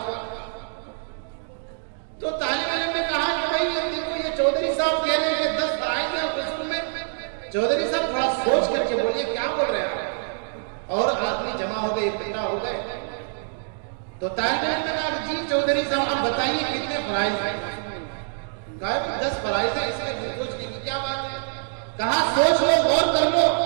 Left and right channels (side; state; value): left; silent; digital silence